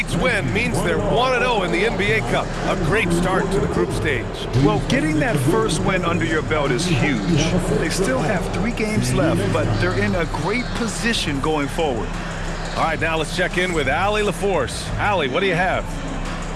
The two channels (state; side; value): identical; both; correlation 1.00